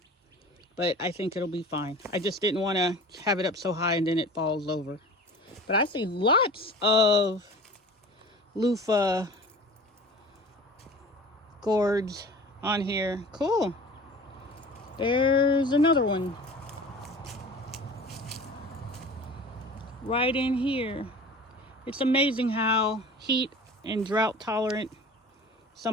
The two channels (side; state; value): both; normal; correlation 0.40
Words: but I think it'll be fine. I just didn't want to have it up so high and then it falls over. But I see lots of loofah gourds on here. Cool. There's another one right in here. It's amazing how heat and drought tolerant